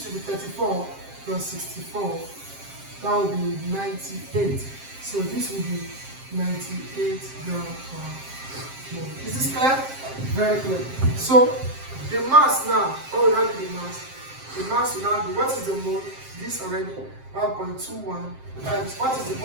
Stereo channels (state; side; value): late; left; 7.6 ms